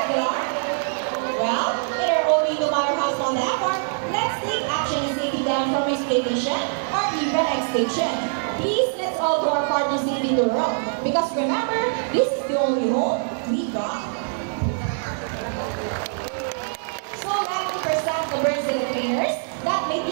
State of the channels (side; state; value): left; silent; digital silence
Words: Well, with our own no matter how small they are, let's take action in saving them from exploitation or even extinction. Please, let's all do our part to saving the world. Because remember, this is the only home we got. So let me present the birds and the trainers that make